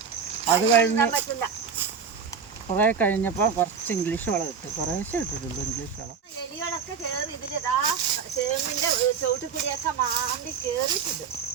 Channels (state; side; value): quieter; left; 6.4 dB